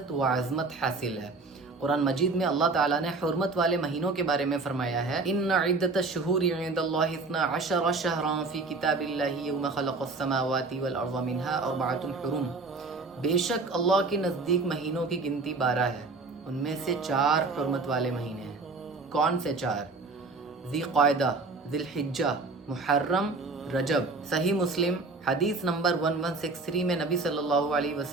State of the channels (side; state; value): left; quieter; 3.7 dB